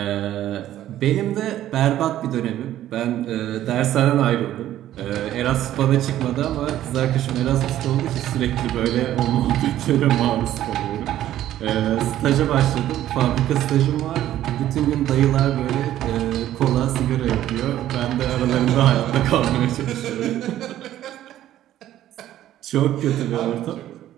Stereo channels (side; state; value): left; quieter; 12.8 dB